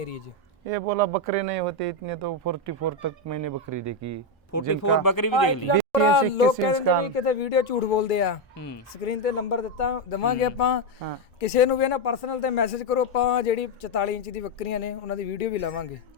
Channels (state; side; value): normal; both; correlation 0.06